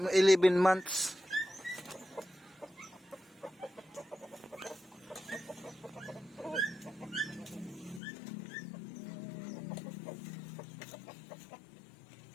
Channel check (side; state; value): right; drops out; at 8.0 s